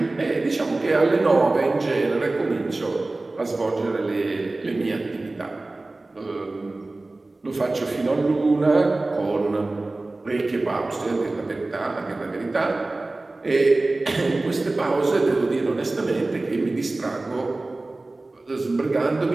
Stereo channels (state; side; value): quieter; left; 3.0 dB